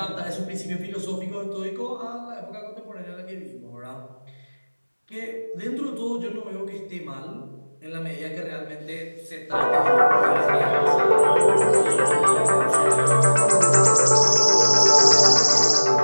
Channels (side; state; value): both; inverted; correlation -1.00